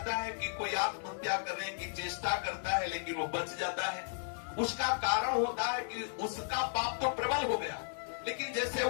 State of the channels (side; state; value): right; silent; 55 dB below the other